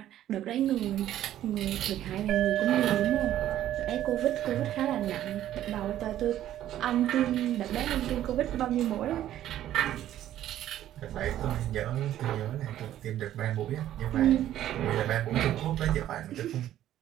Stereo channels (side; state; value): left; quieter; 12.4 dB